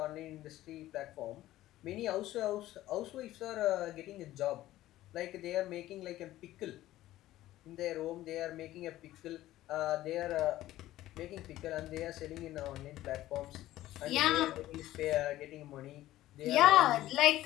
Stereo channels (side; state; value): right; quieter; 15.0 dB